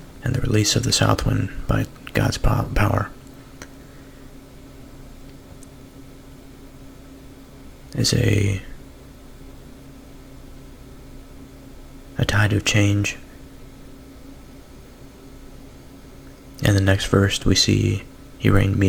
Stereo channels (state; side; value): identical; both; correlation 1.00